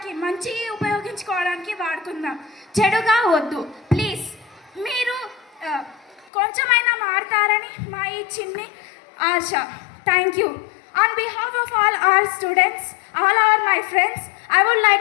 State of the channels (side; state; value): right; drops out; at 6.3 s